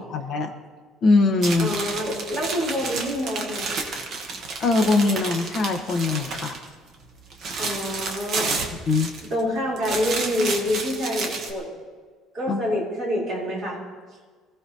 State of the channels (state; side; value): normal; both; correlation 0.67